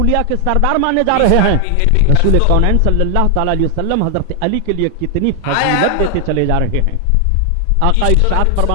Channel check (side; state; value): both; different; correlation 0.00